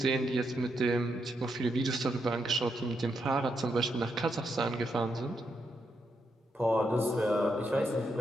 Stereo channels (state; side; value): normal; both; correlation 0.81